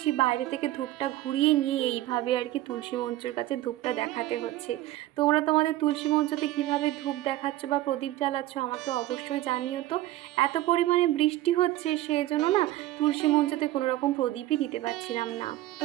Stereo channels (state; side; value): quieter; left; 15.5 dB